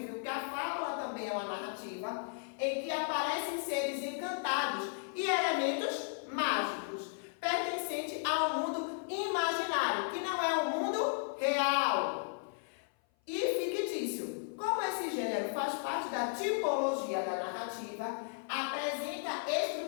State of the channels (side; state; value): right; silent; 54 dB below the other